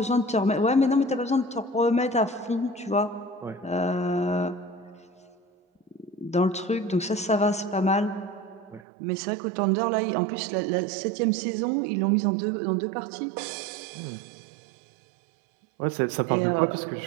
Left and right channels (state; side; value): drops out; left; at 8.8 s